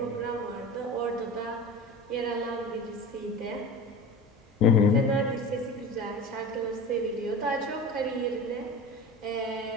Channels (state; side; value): normal; both; correlation 0.32